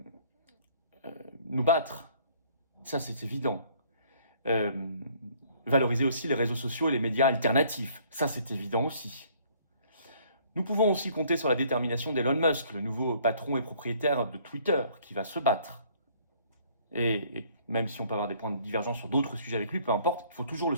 nous battre. Ça, c'est évident. Valoriser aussi les réseaux sociaux et les médias alternatifs. Ça, c'est évident aussi. Nous pouvons aussi compter sur la détermination d'Elon Musk, le nouveau patron et propriétaire de Twitter, qui va se battre. Et même si on peut avoir des points de divergence sur d'autres sujets avec lui, peu importe, il faut toujours le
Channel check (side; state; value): both; inverted; correlation -0.60